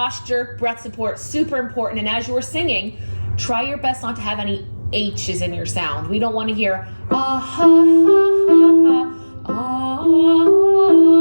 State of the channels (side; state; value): both; inverted; correlation -1.00